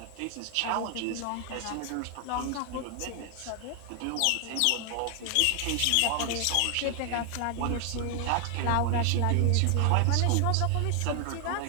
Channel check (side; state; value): both; different; correlation 0.00